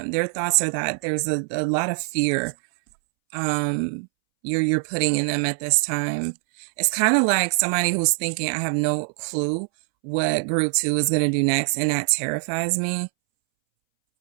Their thoughts are that there's a lot of fear you're putting in them at this time. It's kind of like somebody who's thinking, I have no clue what group 2 is going to do next, and that terrifies me.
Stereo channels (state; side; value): silent; left; 63 dB below the other